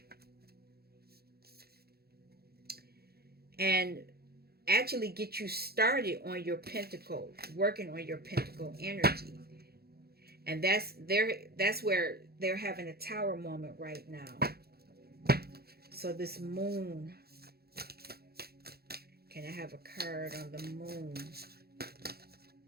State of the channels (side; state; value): left; late; 0.46 ms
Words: And actually get you started on your pentacle, working on your pentacle energy. And that's where they're having a tower moment right now. So this moon, can I have a card on the moon?